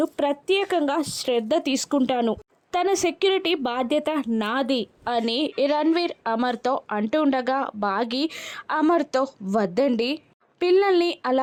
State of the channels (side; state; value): both; identical; correlation 1.00